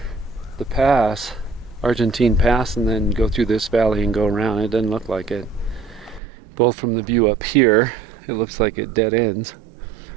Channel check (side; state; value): left; drops out; at 6.2 s